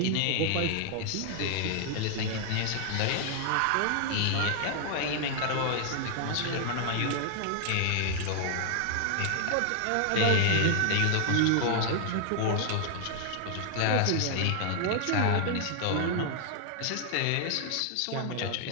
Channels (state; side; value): different; both; correlation 0.00